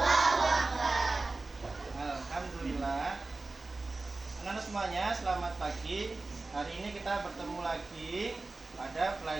Akbar. Alhamdulillah. Anak-anak semuanya, selamat pagi. Hari ini kita bertemu lagi pada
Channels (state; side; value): quieter; left; 3.4 dB